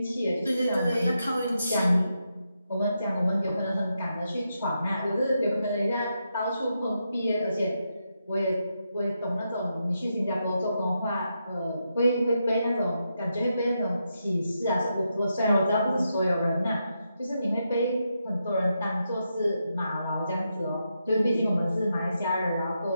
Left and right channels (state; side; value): inverted; both; correlation -0.84